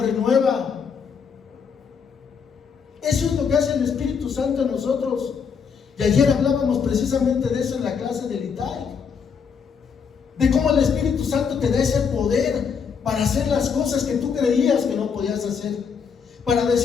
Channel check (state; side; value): quieter; right; 6.4 dB